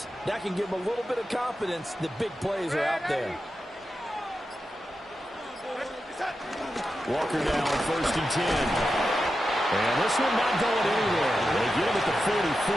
that can give them a little bit of confidence that big plays are out there. Walker now on 1st and 10. And this one not going anywhere. They get him at the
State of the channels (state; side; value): normal; both; correlation 0.90